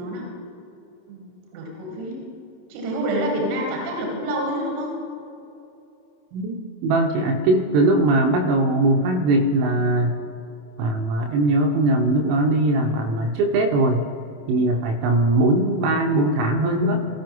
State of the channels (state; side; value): late; left; 27 ms